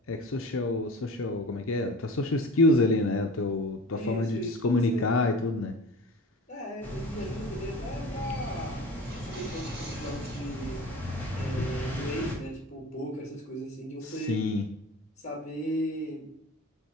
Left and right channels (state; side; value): normal; both; correlation 0.38